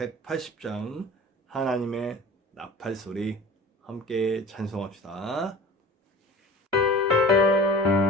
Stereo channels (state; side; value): normal; both; correlation 0.39